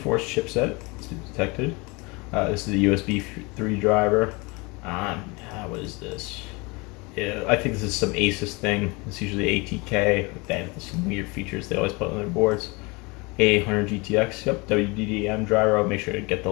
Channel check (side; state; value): right; quieter; 26.9 dB